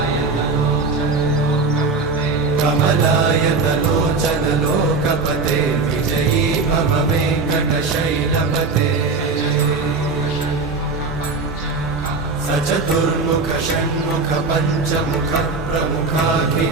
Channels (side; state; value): left; quieter; 4.0 dB